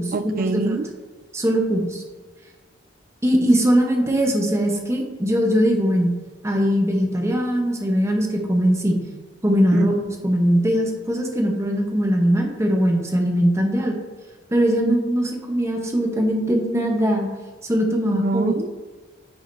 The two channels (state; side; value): normal; both; correlation 0.85